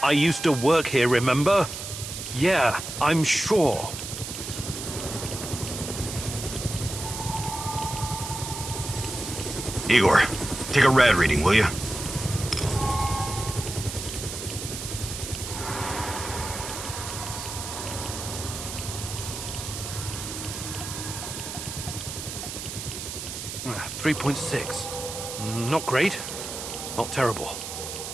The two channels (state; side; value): noise; right; hiss, 7 dB below the sound